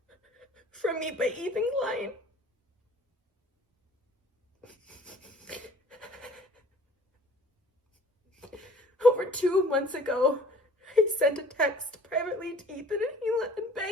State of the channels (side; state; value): both; normal; correlation 0.51